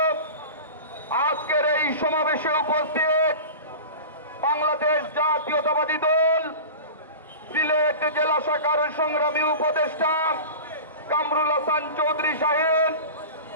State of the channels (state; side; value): inverted; both; correlation -0.33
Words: আজকের এই সমাবেশে উপস্থিত বাংলাদেশ জাতীয়তাবাদী দল সিলেট জেলা শাখার সংগ্রামী উপদেষ্টা কামরুল হাসান চৌধুরী সাহেব,